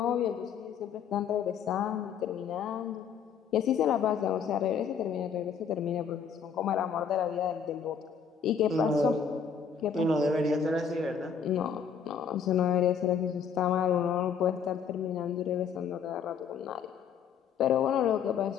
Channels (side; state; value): right; quieter; 6.9 dB